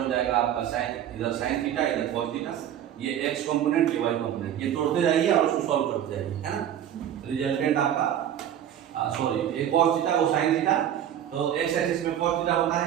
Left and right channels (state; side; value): quieter; left; 10.4 dB